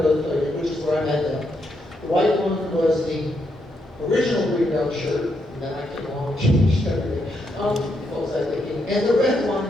both played in, which is where I met them. The white one was the original Greenbelt shirt, and then I came along and changed everything. What was I thinking? And the red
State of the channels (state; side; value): normal; both; correlation 0.79